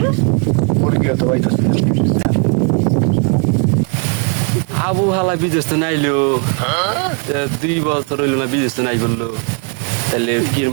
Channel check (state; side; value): quieter; left; 35.3 dB